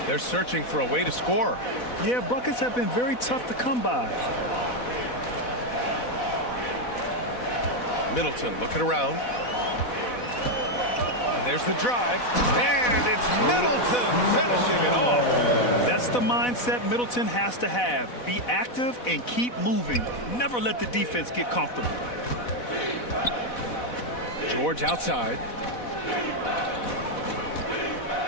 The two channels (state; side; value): late; right; 4.1 ms